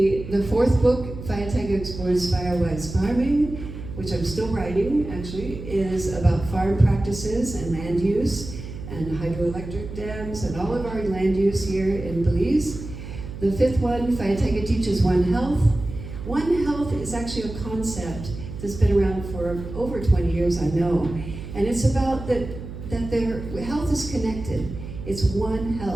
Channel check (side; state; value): right; noise; hum, 10 dB below the sound